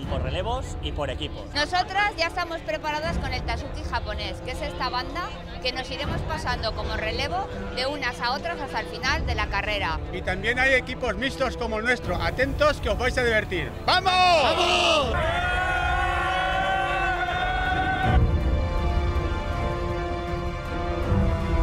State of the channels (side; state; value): both; identical; correlation 1.00